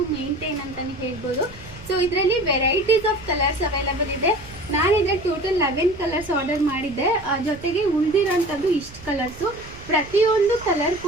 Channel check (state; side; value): noise; right; rumble, 18 dB below the sound